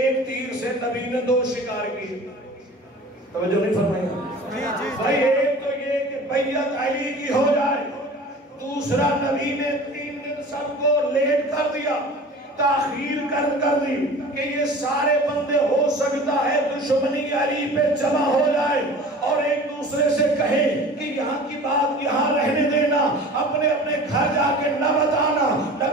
تیر سے نبی نے 2 شکار کی، توجہ نہیں فرمایا بھائی؟ ایک تو یہ کہ بیعت علی کی ہو جائے، دوسرا نبی نے 3 دن سب کو لیٹ کر دیا، تاخیر کر دی کہ یہ سارے بندے ہو سکتا ہے دشمنی علی پہ جمع ہو جائے اور ایک دوسرے سے کہیں کہ یہاں کی بات یہاں رہنے دینا، اپنے اپنے گھر جا کے نہ بتانا۔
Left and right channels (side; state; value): both; normal; correlation 0.41